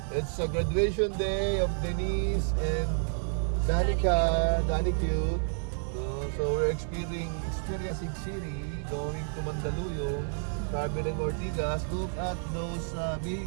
It's a graduation day of Denise and Danica, Dani Cute. So we're experiencing City, going to Mandaluyong, traveling Ortigas. Look at those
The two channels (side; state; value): left; silent; digital silence